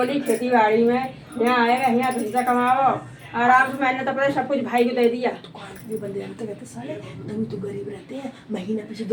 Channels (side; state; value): both; identical; correlation 1.00